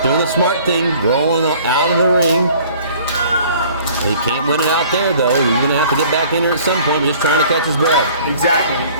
doing the smart thing, rolling out of the ring. He can't win it out there, though. He's going to have to get back in here at some point, just trying to catch his breath. Exactly.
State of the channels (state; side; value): inverted; both; correlation -0.52